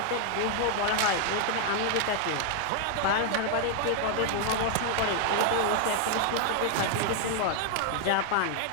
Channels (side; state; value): both; different; correlation 0.00